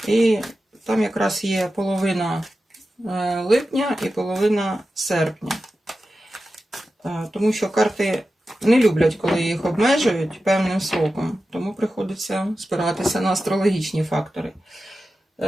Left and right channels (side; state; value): both; normal; correlation 0.92